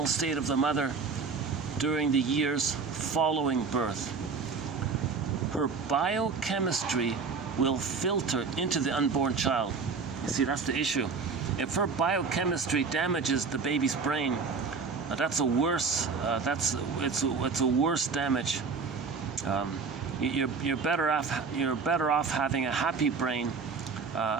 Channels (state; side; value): quieter; left; 5.0 dB